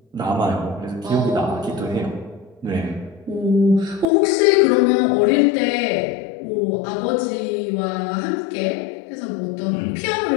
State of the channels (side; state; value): right; drops out; at 4.0 s